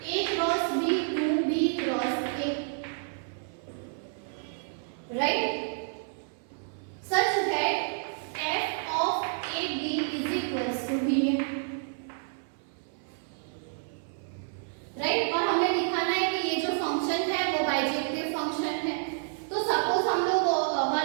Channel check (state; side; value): silent; left; 55 dB below the other